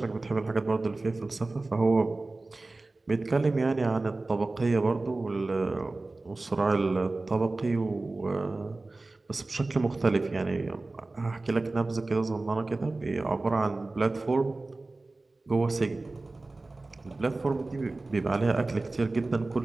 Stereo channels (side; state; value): left; quieter; 3.2 dB